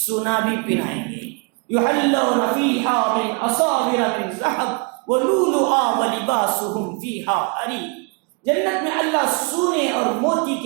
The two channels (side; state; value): left; quieter; 33.4 dB